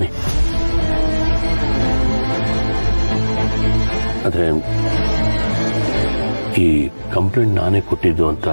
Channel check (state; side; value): inverted; both; correlation -1.00